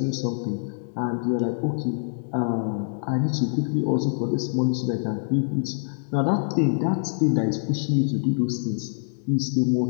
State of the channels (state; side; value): silent; right; digital silence